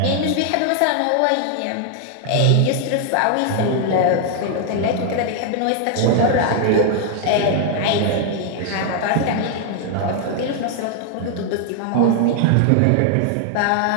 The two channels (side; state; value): both; different; correlation 0.00